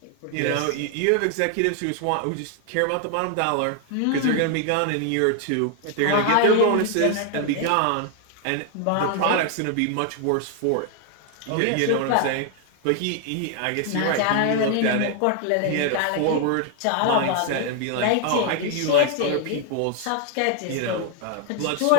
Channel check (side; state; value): both; different; correlation 0.00